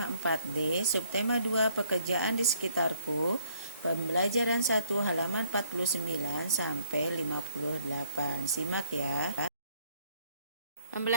4D, subtema 2 pekerjaan di sekitarku, pembelajaran 1 halaman 49 sampai 58. Simak ya.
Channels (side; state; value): both; inverted; correlation -0.66